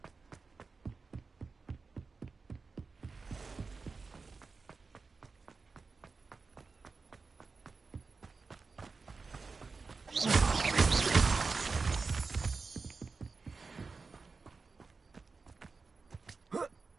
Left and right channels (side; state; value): left; quieter; 4.4 dB